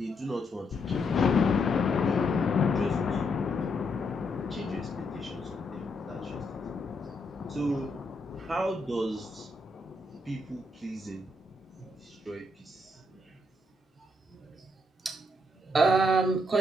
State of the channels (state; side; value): normal; both; correlation 0.77